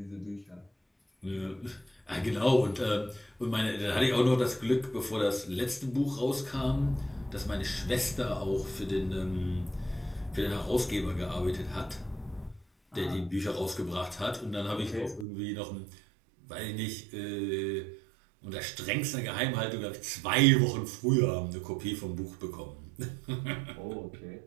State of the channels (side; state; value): left; drops out; at 15.2 s